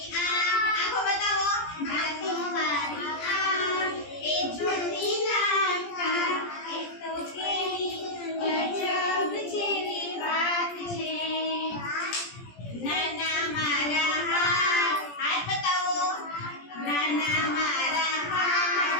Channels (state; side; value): late; right; 17 ms